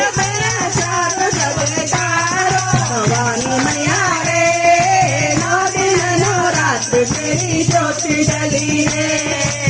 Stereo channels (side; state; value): both; identical; correlation 1.00